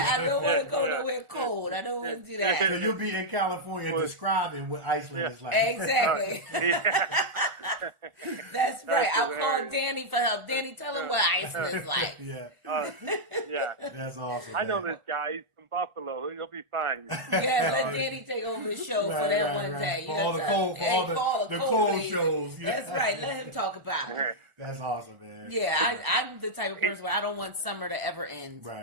don't want to go nowhere cold. I don't want to do that. So you'll be in California describing what Iceland is like. Exactly. That's right. I'll call Danny for help. Danny, tell him what Iceland's like. That's awesome. I know this guy. He's from Buffalo. He'll be fine. Let Danny take over the show for that one day. For all the cold shows. That's right. Let him talk about it. That's awesome, man. Yeah, I'm the type of person where I don't want summer to ever end.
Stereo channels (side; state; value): left; late; 1.4 ms